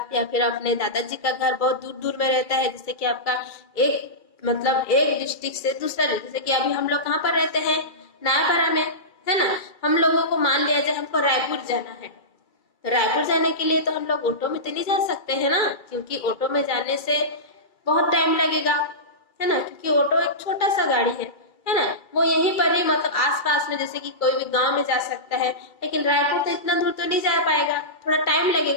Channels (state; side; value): late; right; 2.3 ms